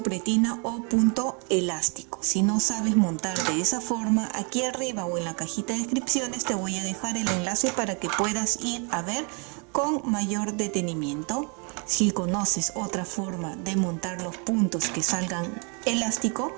pretina o punto elástico. Si no sabes montar de esa forma, aquí arriba o en la cajita de descripciones te voy a dejar el enlace para que puedas ir a ver con mayor detenimiento. Si conoces otra forma de montar los puntos que salgan elástico,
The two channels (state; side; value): quieter; left; 35.6 dB